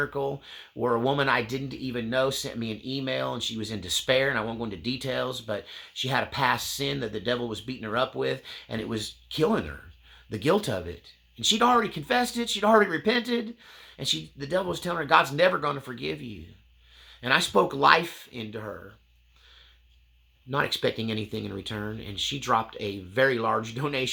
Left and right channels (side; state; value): both; identical; correlation 1.00